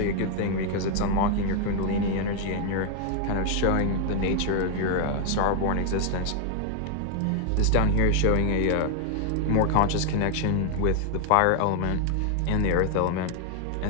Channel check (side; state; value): both; different; correlation 0.00